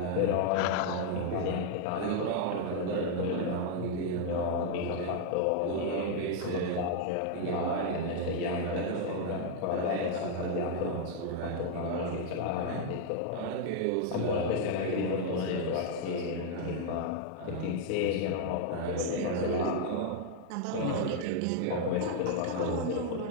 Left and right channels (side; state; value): both; different; correlation 0.00